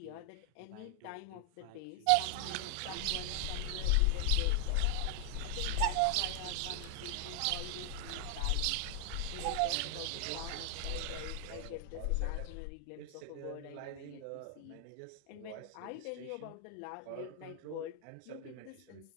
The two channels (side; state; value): both; different; correlation 0.00